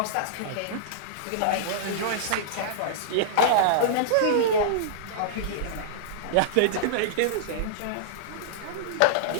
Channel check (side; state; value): both; different; correlation -0.02